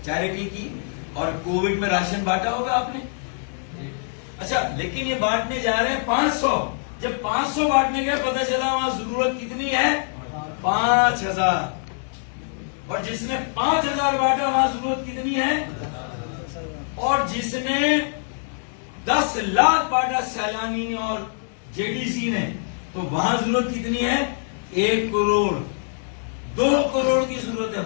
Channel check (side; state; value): right; silent; digital silence